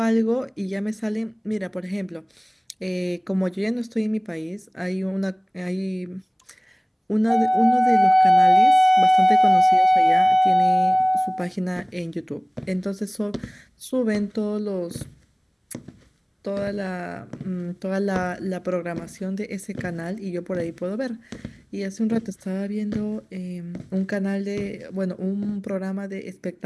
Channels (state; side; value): identical; both; correlation 1.00